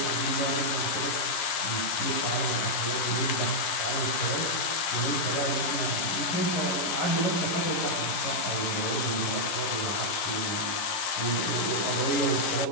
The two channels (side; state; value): right; late; 11 ms